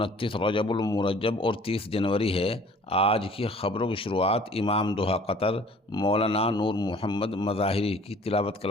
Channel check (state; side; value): normal; both; correlation 0.51